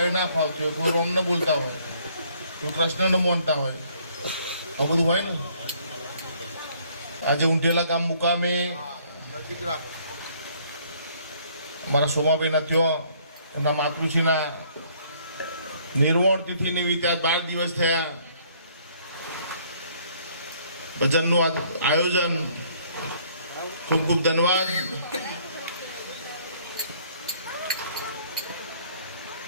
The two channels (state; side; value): inverted; both; correlation -0.62